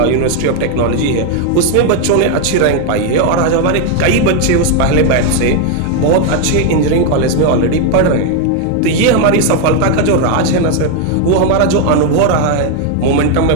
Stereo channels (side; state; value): both; different; correlation 0.01